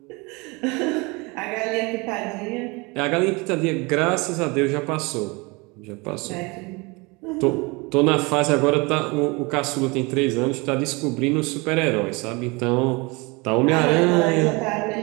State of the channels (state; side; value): quieter; left; 26.6 dB